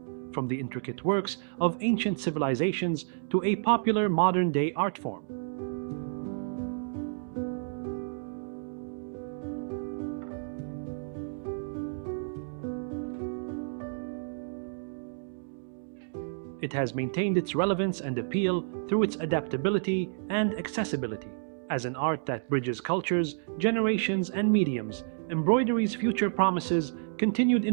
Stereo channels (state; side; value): silent; left; digital silence